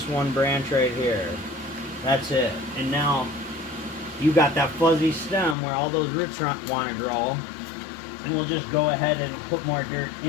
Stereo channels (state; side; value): drops out; right; at 5.6 s